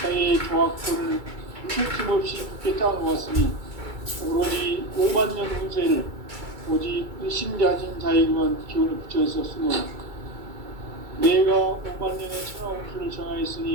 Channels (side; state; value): left; late; 2.3 ms